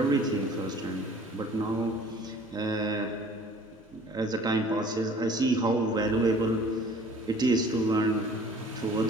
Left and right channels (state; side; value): normal; both; correlation 0.50